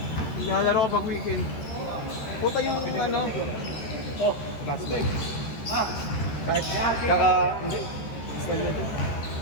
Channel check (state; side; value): late; right; 13 ms